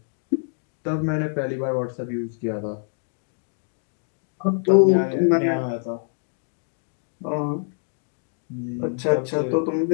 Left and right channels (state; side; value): silent; right; 61 dB below the other